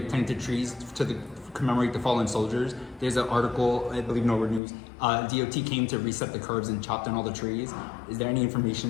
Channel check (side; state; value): right; drops out; at 4.6 s